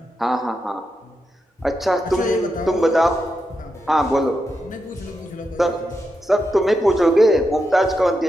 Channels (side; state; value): both; normal; correlation 0.86